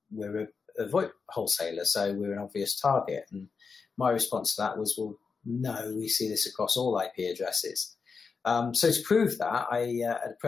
we're a VoIP wholesaler, so we're an obvious target. And my response to that was, well, no, we see this across all IP addresses. So to prove that, at a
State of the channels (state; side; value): quieter; right; 5.2 dB